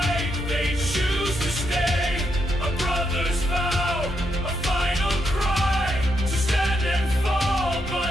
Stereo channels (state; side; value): normal; both; correlation 0.80